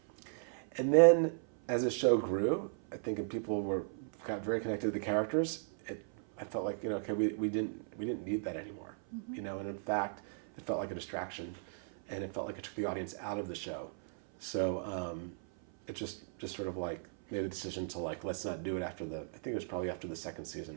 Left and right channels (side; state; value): left; silent; 54 dB below the other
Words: And then as the show grew, I think, and people got very connected to the characters, I felt like, okay, we didn't need that anymore, and in fact, it felt like a distraction, and it felt like it took the audience out of the show. So it just sort of like made a decision to like, let's not do it I think it was probably after the second